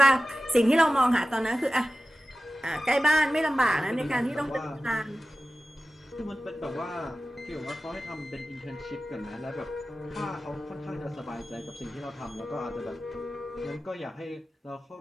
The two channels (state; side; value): normal; both; correlation 0.95